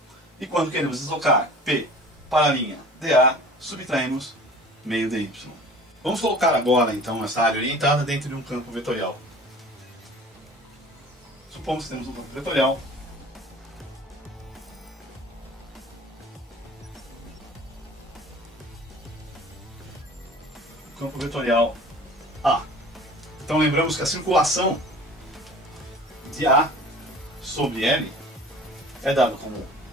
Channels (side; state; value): both; normal; correlation 0.43